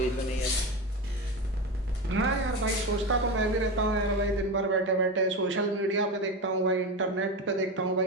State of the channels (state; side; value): normal; both; correlation 0.21